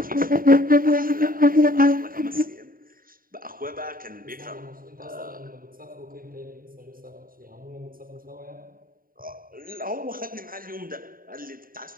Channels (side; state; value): left; late; 0.41 ms